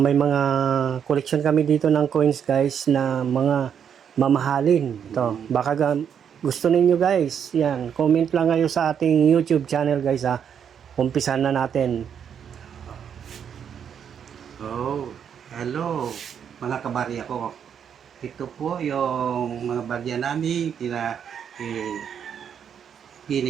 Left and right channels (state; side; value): quieter; left; 8.0 dB